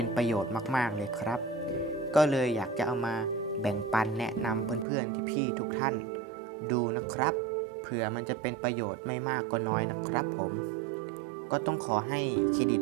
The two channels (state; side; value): drops out; left; at 4.9 s